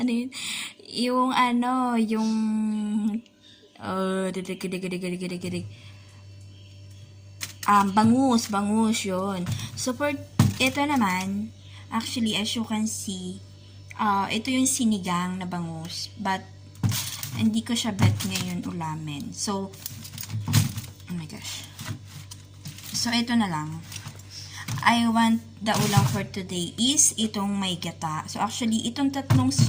yun? Didig. Bangus yun. So, for ito naman, actually, as you can see, ito yung sinigang na bangus. But, hindi ko siya bet ngayon ulamin. So, oh my gosh. So, ito na lang. I want the ulam for today is itong may gata. So, actually, itong tatlong,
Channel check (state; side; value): identical; both; correlation 1.00